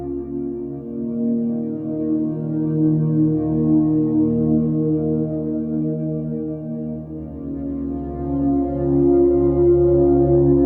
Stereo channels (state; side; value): identical; both; correlation 1.00